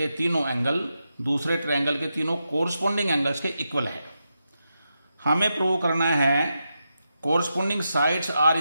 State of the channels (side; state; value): both; inverted; correlation -0.87